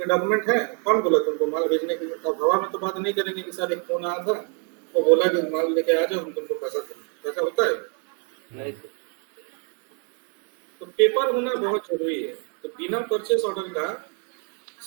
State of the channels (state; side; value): quieter; left; 39.4 dB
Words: डॉक्यूमेंट है, कौन बोला तुमको माल भेजने के लिए? तो हवा में तो बात नहीं करेंगे कि सर एक फोन आया था वो बोला कि माल लेके आ जाओ हम तुमको पैसा देंगे, ऐसा होता है? नहीं सर। तो पेपर होना बहुत जरूरी है। तो बिना परचेस ऑर्डर का